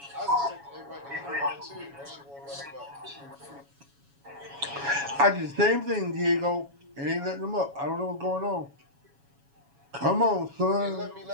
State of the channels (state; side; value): late; left; 7.2 ms